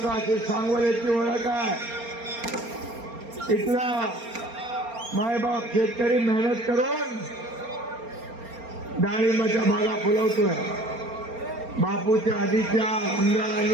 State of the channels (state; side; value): late; left; 4.3 ms